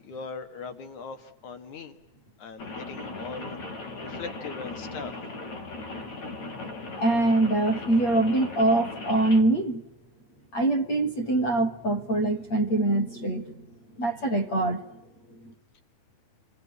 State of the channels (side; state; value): right; late; 8.5 ms